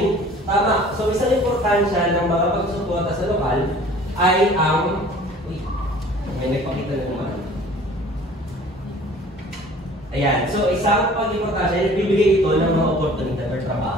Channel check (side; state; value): both; normal; correlation 0.49